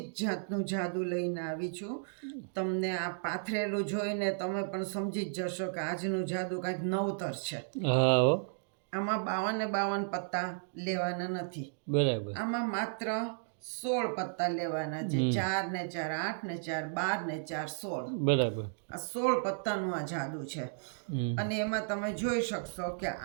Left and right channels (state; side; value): silent; left; digital silence